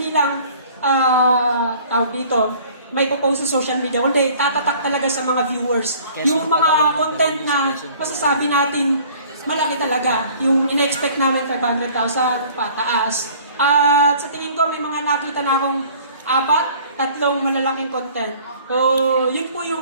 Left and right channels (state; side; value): inverted; both; correlation -0.51